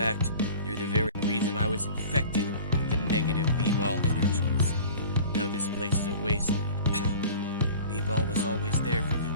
you're the very reason I was infected with the negative B-ball energies. Now this place is a wasteland. B-ball was always there for you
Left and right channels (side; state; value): both; inverted; correlation -0.42